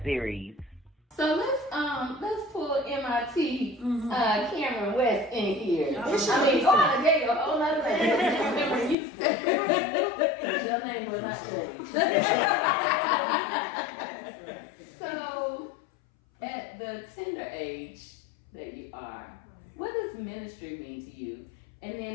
series. So let's pull MIT Cameron West in here. Go out and get a whole other name. Your name will not change. So, at the tender age that you are, what does ministry mean to you? And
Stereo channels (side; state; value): right; drops out; at 9.0 s